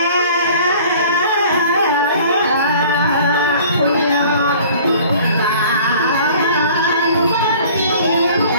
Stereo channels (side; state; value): both; inverted; correlation -0.48